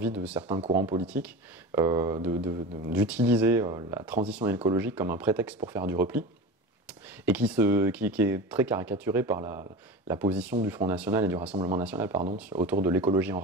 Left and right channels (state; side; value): normal; both; correlation 0.30